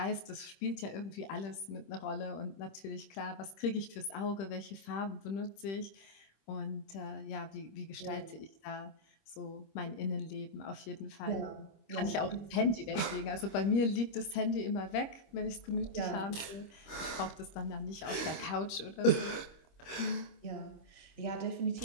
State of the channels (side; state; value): right; late; 26 ms